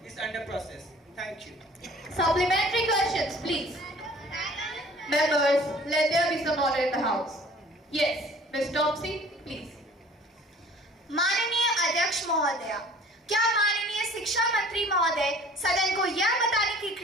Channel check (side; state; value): both; normal; correlation 0.50